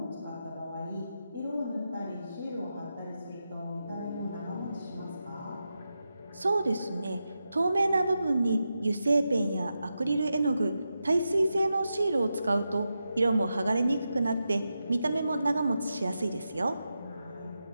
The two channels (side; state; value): both; inverted; correlation -0.89